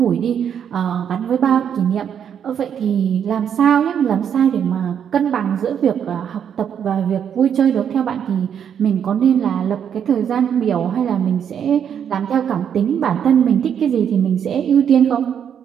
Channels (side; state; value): left; quieter; 8.4 dB